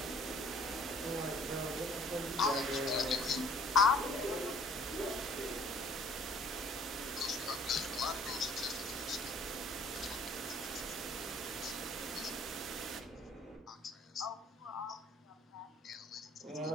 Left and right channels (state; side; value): normal; both; correlation 0.55